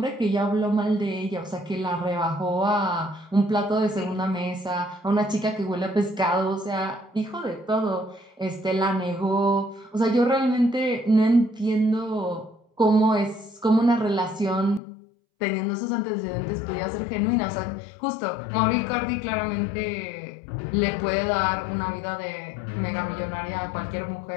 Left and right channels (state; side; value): drops out; right; at 14.8 s